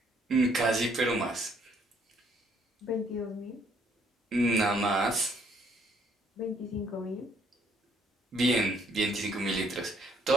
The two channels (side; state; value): both; normal; correlation 0.66